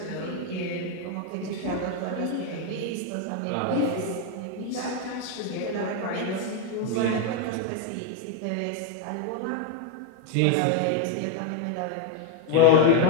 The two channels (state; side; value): different; both; correlation 0.01